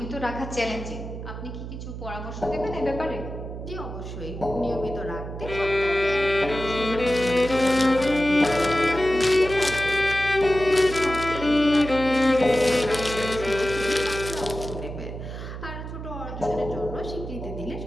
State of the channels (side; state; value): right; noise; hum, 9 dB below the sound